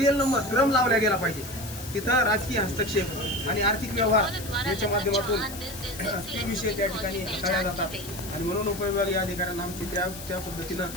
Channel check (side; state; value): left; noise; hiss, 12 dB below the sound